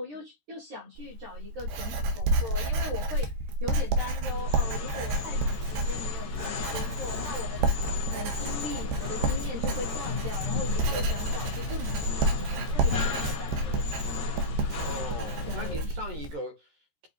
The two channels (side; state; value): left; late; 13 ms